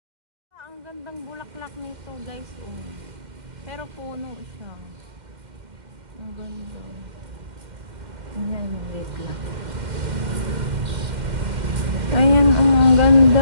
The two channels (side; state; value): left; late; 2.1 ms